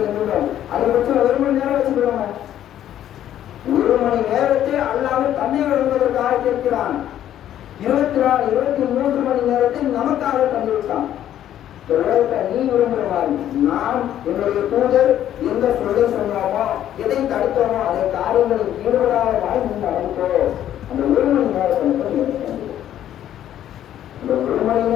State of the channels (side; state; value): right; quieter; 11.4 dB